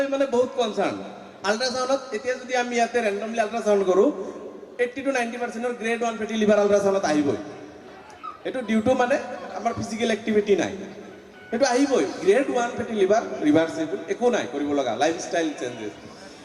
মানে বহুত কনচাৰ্ণ আল্ট্ৰাচাউণ্ডত এতিয়া যদি আমি ইয়াতে ৰেণ্ডমলি আল্ট্ৰাচাউণ্ড কৰোঁ 80 to 90% গ্ৰেড 1 ফেটি লিভাৰ আল্ট্ৰাচাউণ্ডত আহিবই এইটো ডিউ টু মানে আমাৰ ফিজিকেল এক্টিভিটি নাই সেইটো আহিবই গ্ৰেড 1 ফেটি লিভাৰ ৰিভাৰ্চিবল একো নাই কৰিব লগা লাইফষ্টাইল চেঞ্জেছ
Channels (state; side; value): identical; both; correlation 1.00